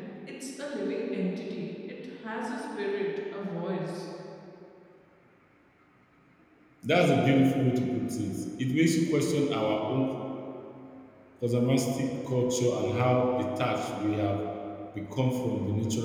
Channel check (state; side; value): identical; both; correlation 1.00